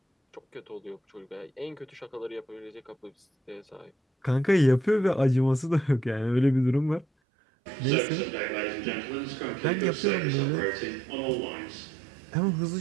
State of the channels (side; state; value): left; drops out; at 7.1 s